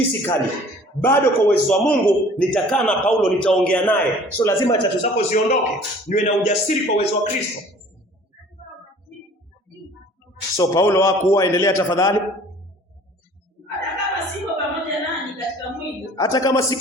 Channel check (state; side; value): normal; both; correlation 0.50